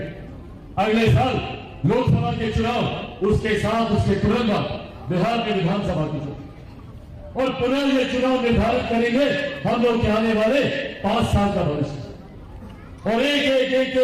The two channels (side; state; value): both; identical; correlation 1.00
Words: अगले साल लोकसभा के चुनाव, उसके साथ उसके तुरंत बाद बिहार के विधानसभा के चुनाव, और पुनः ये चुनाव निर्धारित करेंगे हम लोग के आने वाले 5 साल का भविष्य। और एक एक एक